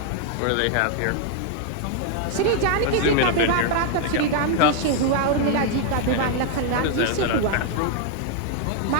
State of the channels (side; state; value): both; different; correlation 0.00